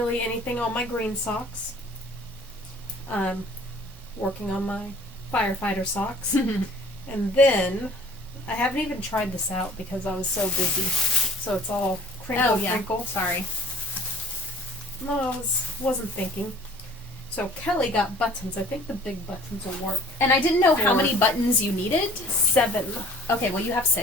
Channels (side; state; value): both; normal; correlation 0.51